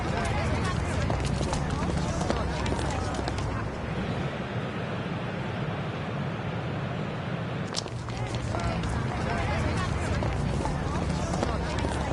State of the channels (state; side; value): identical; both; correlation 1.00